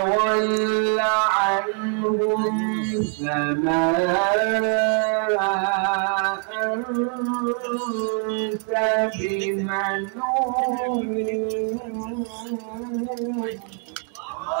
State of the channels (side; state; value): left; quieter; 38.8 dB